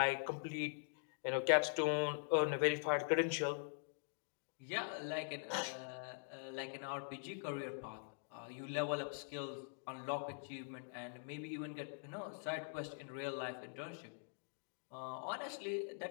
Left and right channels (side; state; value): right; silent; digital silence